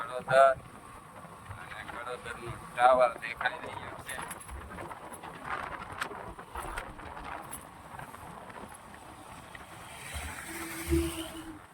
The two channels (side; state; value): both; identical; correlation 1.00